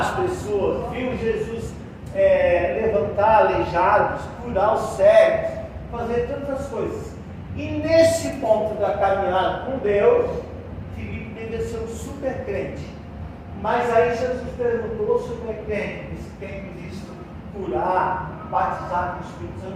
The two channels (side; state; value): both; identical; correlation 1.00